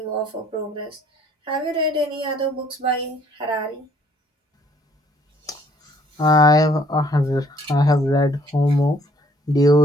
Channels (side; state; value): both; normal; correlation 0.61